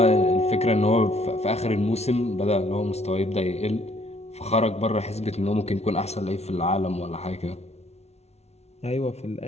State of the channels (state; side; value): late; right; 0.31 ms